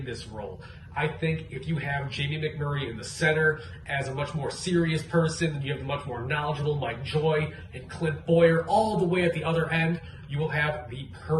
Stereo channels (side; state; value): both; identical; correlation 1.00